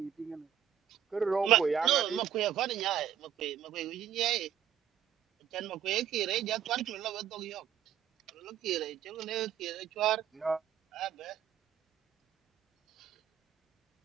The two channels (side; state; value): left; quieter; 9.5 dB